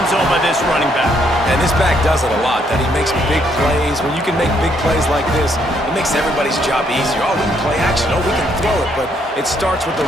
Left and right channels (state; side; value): normal; both; correlation 0.71